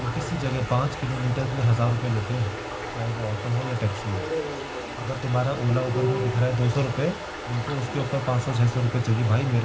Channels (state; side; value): identical; both; correlation 1.00